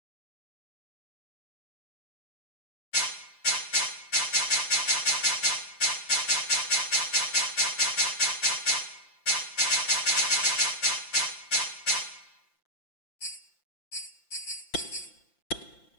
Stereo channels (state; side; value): late; right; 5.8 ms